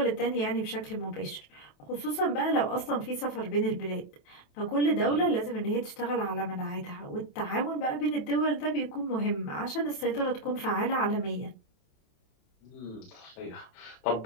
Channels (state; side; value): late; right; 27 ms